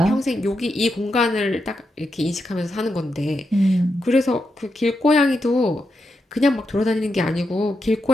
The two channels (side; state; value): both; normal; correlation 0.85